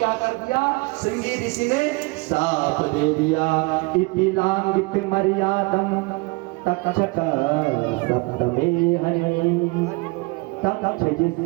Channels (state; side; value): quieter; left; 26.4 dB